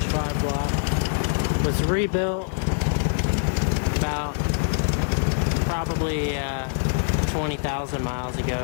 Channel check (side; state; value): right; silent; 62 dB below the other